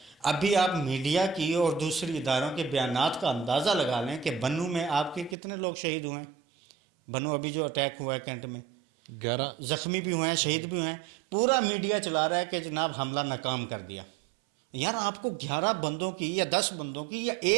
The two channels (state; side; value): drops out; left; at 5.4 s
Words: ابھی آپ میڈیا کی اور دوسری اداروں کے بیانات کا اندازہ لگا لیں کہ بنو میں آپ کے کتنے لوگ شہید ہوئے ہیں. بنو ابھی جو اٹیک ہوا ہے کینٹ میں 11 زخمی بھی ہوئے ہیں, شہید بھی ہوئے ہیں. پورا میڈیا چلا رہا ہے کہ جناب حملہ ناکام کر دیا. یار آپ کو 11 بندوں کی یا 10 بندوں کی یا